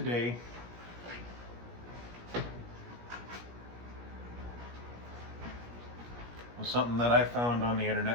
was something that I found on the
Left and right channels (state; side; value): late; left; 17 ms